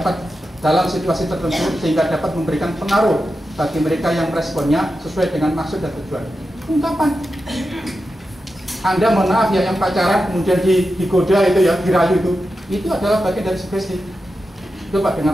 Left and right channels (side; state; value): both; normal; correlation 0.90